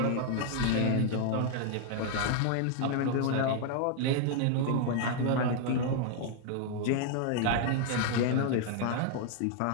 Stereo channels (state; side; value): different; both; correlation 0.00